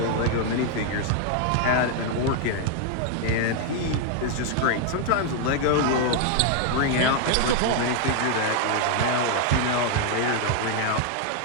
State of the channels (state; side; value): different; both; correlation 0.00